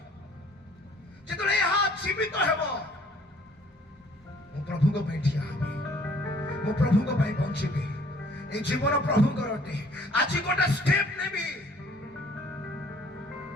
ଯେତେବେଳେ ଏହା ଜୀବିତ ହେବ ମୁଁ ପ୍ରଭୁଙ୍କ ପାଇଁ ଠିଆ ହେବି ମୁଁ ପ୍ରଭୁଙ୍କ ପାଇଁ ବଞ୍ଚିବି ଏ ଜୀବନ ପ୍ରଭୁଙ୍କର ଅଟେ ଆଜି ଗୋଟେ ଷ୍ଟେପ୍ ନେବି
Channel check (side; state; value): both; normal; correlation 0.58